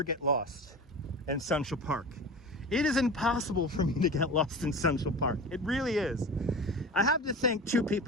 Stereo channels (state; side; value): normal; both; correlation 0.32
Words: get lost in Central Park. It is impossible for me to get lost in Central Park. It really is. I have to thank two